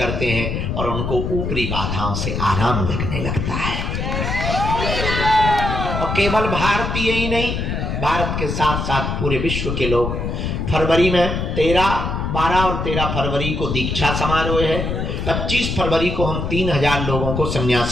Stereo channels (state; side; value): noise; left; rumble, 2 dB below the sound